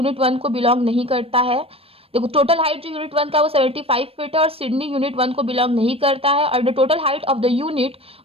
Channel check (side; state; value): left; late; 0.28 ms